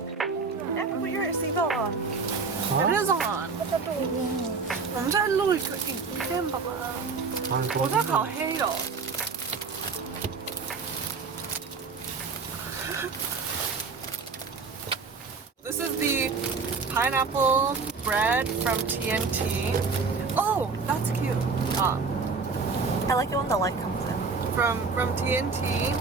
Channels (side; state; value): left; quieter; 4.8 dB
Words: Put your seatbelt on. It is on. 我们在录一个影片，宝宝。我在烤黑的。This is the pineapple bread from TNT. Oh, that's cute. I like it when the light comes in. From TNT.